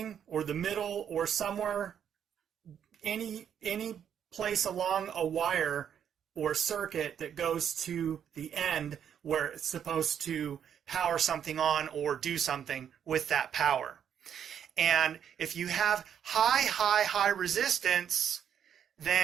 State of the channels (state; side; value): quieter; left; 8.7 dB